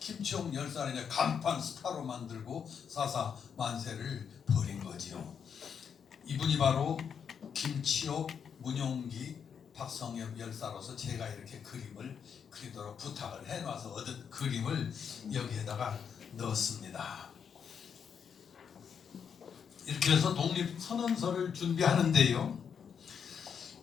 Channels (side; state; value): right; quieter; 7.2 dB